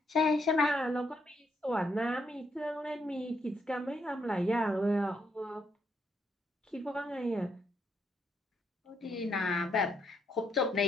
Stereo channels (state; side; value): normal; both; correlation 0.76